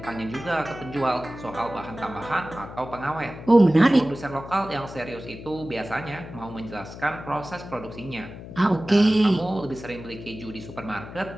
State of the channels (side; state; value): left; noise; hum, 13 dB below the sound